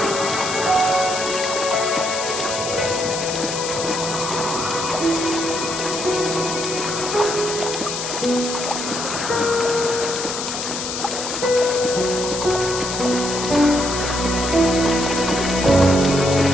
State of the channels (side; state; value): left; noise; hiss, 5 dB below the sound